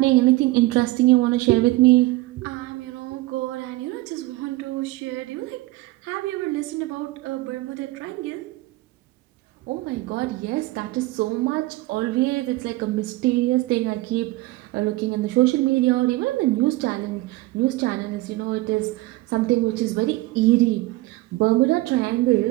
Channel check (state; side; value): quieter; left; 19.4 dB